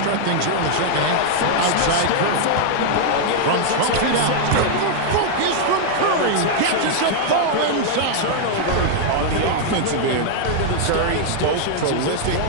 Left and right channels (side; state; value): both; different; correlation -0.01